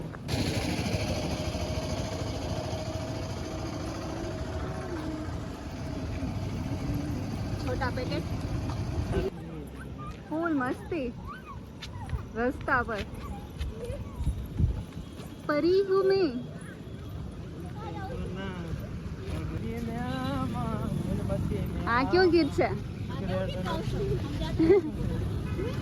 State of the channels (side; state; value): both; identical; correlation 1.00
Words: छोटा पैकेट फूल मस्ती रास्ता पर परी हूँ मैं. આ કયો ગીત છે?